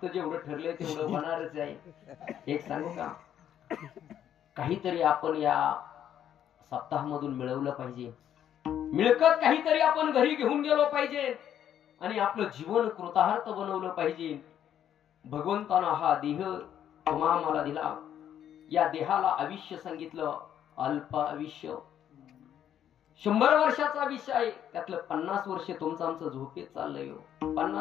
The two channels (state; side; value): quieter; right; 10.1 dB